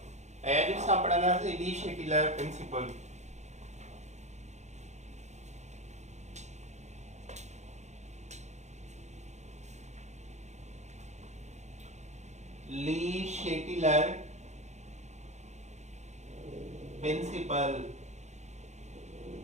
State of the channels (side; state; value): left; late; 0.33 ms